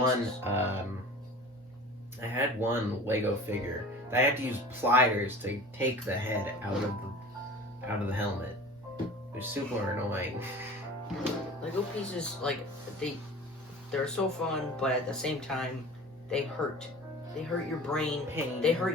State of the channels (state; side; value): normal; both; correlation 0.40